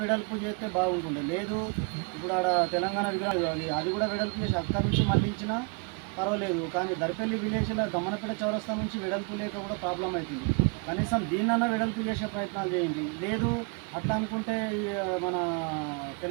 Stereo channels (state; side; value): quieter; left; 34.7 dB